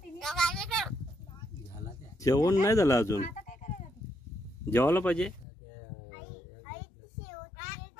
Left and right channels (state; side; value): drops out; right; at 5.5 s